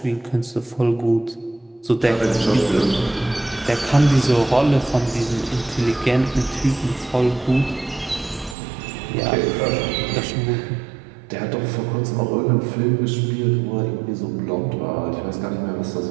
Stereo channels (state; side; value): drops out; left; at 8.6 s